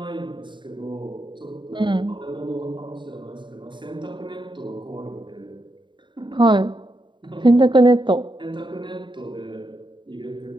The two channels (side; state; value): left; late; 0.23 ms